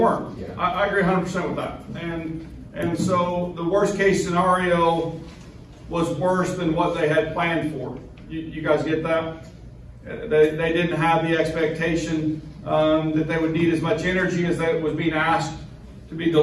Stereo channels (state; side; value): identical; both; correlation 1.00